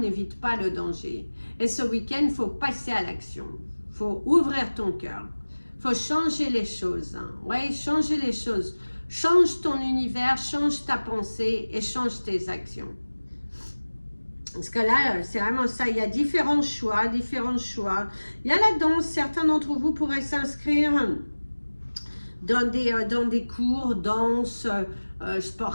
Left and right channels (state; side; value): inverted; both; correlation -1.00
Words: pas le danger. Et ce week-end, il faut passer à l'action. Il faut ouvrir ton cœur. Il faut changer les choses. Oui, changer les choses. Change ton univers, change ta pensée et change tes actions. Parce que là, c'est vraiment ça. Il y a différents choix, différents choix. Il y a la danse. Certains d'entre vous pourraient s'inscrire dans des cours, danse,